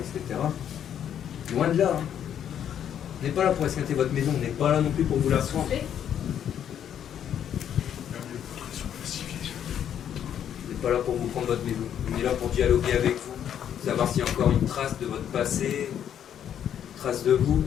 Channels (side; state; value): right; quieter; 9.5 dB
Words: Loin de là. Hein. On n'est pas là pour esquinter votre maison, on n'est pas là non plus pour vous la prendre. Fais. On n'est pas là pour vous prendre votre maison. On est là pour dialoguer avec vous, savoir s'il y a encore une trace de votre passé, une trace de vous.